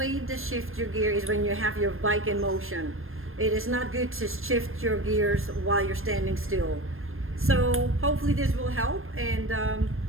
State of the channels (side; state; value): left; late; 0.60 ms